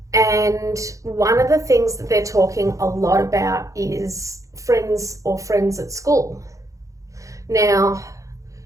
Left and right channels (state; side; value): late; left; 0.16 ms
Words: and one of the things that they're talking a lot about is friends at school. Now,